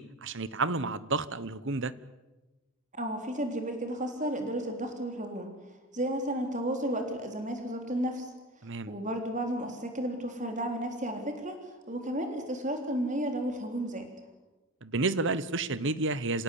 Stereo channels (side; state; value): both; normal; correlation 0.28